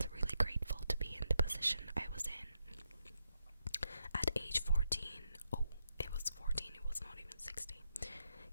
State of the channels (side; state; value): both; inverted; correlation -0.82